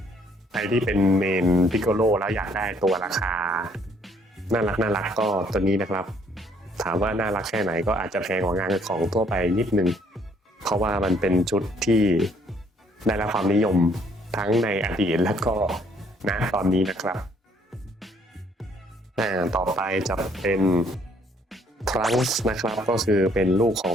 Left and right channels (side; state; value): both; normal; correlation 0.65